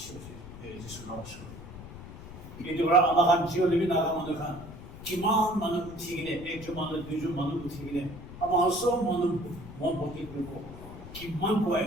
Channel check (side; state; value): left; noise; rumble, 14 dB below the sound